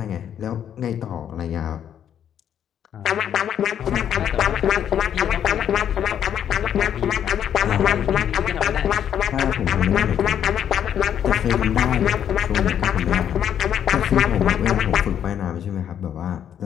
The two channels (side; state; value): right; quieter; 9.5 dB